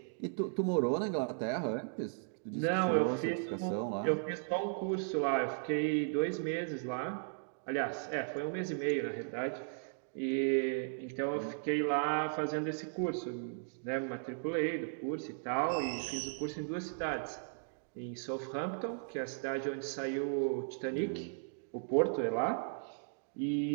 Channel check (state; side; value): silent; left; digital silence